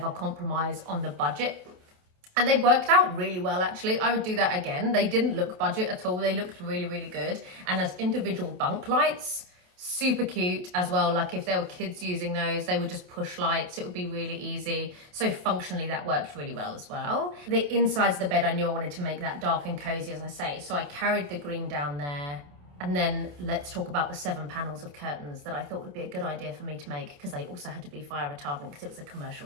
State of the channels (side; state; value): left; late; 28 ms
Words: compromise on the budget. And they worked out really well, actually. I would do that again. They didn't look budget at all. They looked really, really good. And as individual bunk lights, super cute as well. Like if there were kids using those, they would just push lights. It would be really easy. So functionally, that worked really well as well. The insides of the bed, I knew I wanted to make that dark and cozy, as I say. So I carried the green down there. And then let's talk about the 7 panels of curtains that I thought would be a good idea for me to make, because they also had to be fire retardant because it was a